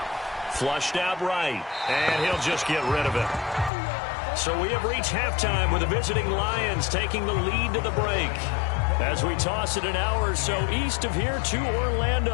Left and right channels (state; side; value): drops out; right; at 3.7 s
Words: Flushed out right, and he'll just get rid of it. So we have reached halftime with the visiting Lions taking the lead to the break. As we toss it an hour or so east of here to